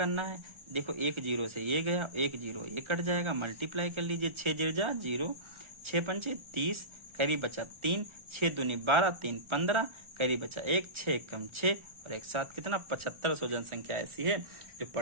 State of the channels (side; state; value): left; late; 1.4 ms